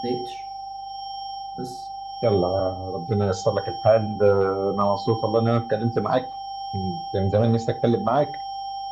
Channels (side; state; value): left; noise; hum, 29 dB below the sound